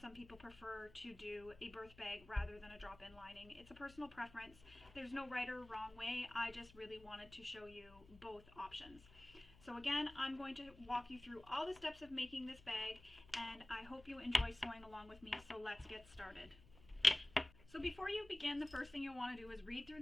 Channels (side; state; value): left; noise; hum, 22 dB below the sound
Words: people prefer to do a birth bag rather than a drop-in lining. It's a personal preference. There's no right or wrong way. I just really wanted to show you both options. So again, I'm going to walk you through all the steps of making this bag, and I hope you enjoy sewing along with me. So let's get started. So before you begin, the first thing you'll want to do is read through